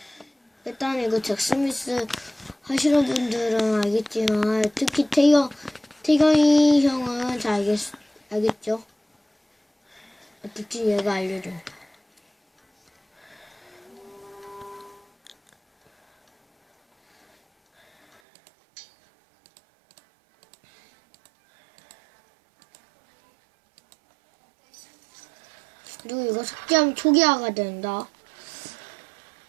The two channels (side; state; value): left; drops out; at 18.2 s